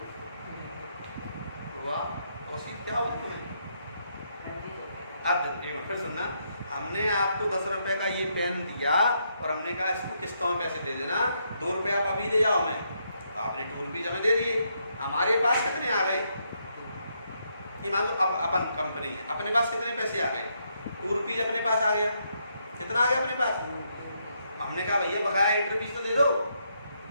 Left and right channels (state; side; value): inverted; both; correlation -0.77